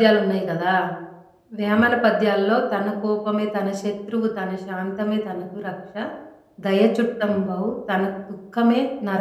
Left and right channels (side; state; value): both; identical; correlation 1.00